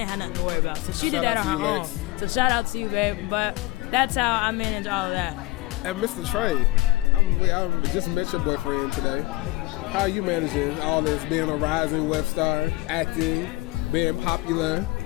have nothing to worry about. So she Shout did that out on to her you, own. Lex. So shout out to you, babe. But that's how I manage all of that. And Mr. Trey, I just met your boyfriend today. How are you managing all this, being a rising web star, acting, being popular?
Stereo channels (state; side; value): quieter; right; 19.7 dB